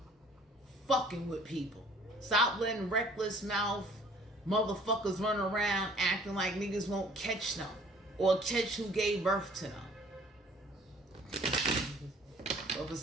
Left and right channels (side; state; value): both; normal; correlation 0.55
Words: fucking with people. Stop letting reckless mouth motherfuckers run around acting like niggas won't catch them or catch who gave birth to them. But for